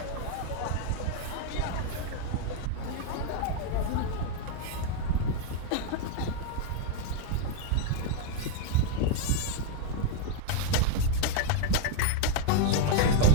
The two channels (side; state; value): both; different; correlation 0.01